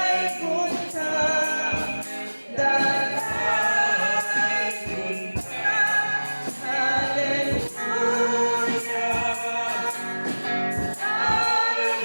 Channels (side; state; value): both; inverted; correlation -1.00